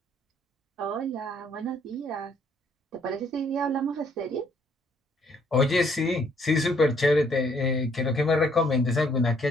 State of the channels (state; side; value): normal; both; correlation 0.65